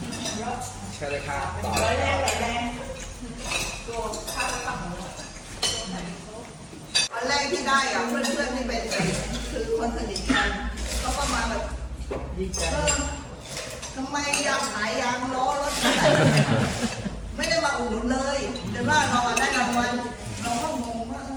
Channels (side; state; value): both; identical; correlation 1.00